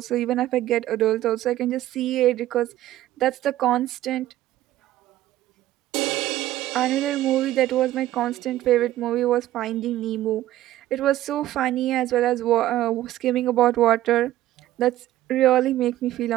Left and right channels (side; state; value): left; quieter; 14.3 dB